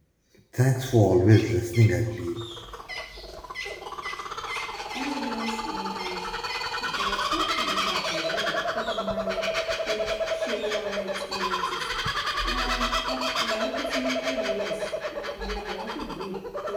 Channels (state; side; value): identical; both; correlation 1.00